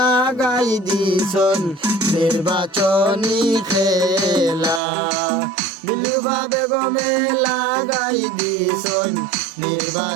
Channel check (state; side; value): drops out; left; at 4.8 s